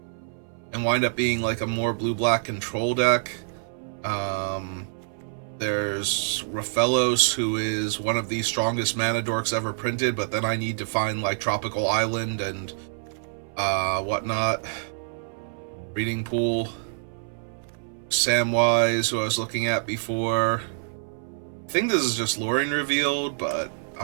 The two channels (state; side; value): silent; left; 61 dB below the other